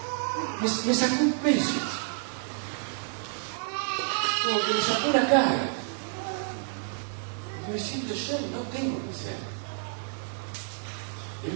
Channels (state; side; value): silent; left; 58 dB below the other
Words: me sacó un peso. Como que me sacó una carga. Me siento yo, no tengo que ser. Es